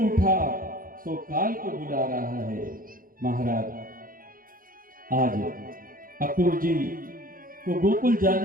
उठा, सो काल को बुला रहा है। महाराज, आज अक्रूर जी को गोकुल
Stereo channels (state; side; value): late; left; 0.41 ms